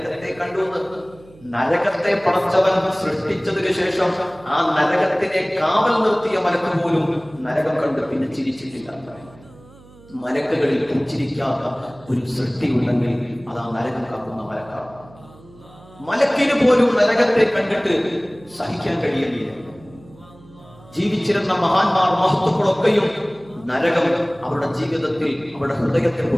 കണ്ടു. നരകത്തെ പടച്ചവൻ സൃഷ്ടിച്ചതിനു ശേഷം ആ നരകത്തിനെ കാവൽ നിർത്തിയ മലക്ക് പോലും നരകം കണ്ട് പിന്നെ ചിരിച്ചിട്ടില്ല. മലക്കുകളിൽ പുഞ്ചിരിക്കാത്ത ഒരു സൃഷ്ടി ഉണ്ടെങ്കിൽ അത് ആ നരകം കാക്കുന്ന മലക്കാണ്. മലക്കിന് പോലും നരകത്തെ കണ്ടിട്ട് സഹിക്കാൻ കഴിയുന്നില്ല. ജീവിച്ചിരുന്ന മഹാന്മാർ, മഹത്തുക്കളൊക്കെയും നരകം അവരുടെ ജീവിതത്തിൽ, അവരുടെ ഹൃദയത്തെ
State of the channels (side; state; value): right; noise; hum, 23 dB below the sound